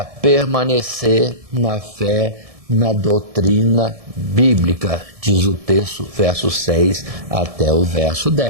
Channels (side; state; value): left; late; 1.7 ms